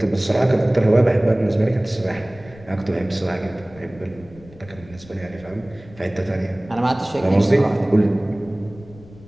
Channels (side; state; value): left; noise; rumble, 21 dB below the sound